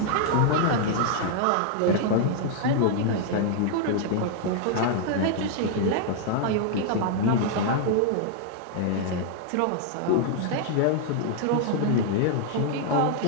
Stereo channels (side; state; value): both; different; correlation 0.00